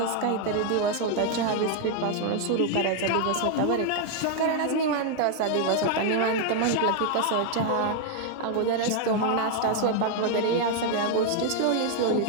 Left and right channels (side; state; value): both; different; correlation 0.00